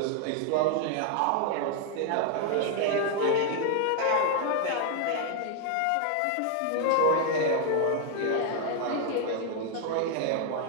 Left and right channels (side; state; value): both; different; correlation 0.00